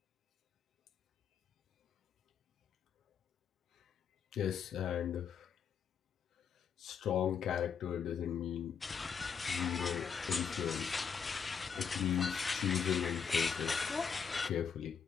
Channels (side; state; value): right; quieter; 6.7 dB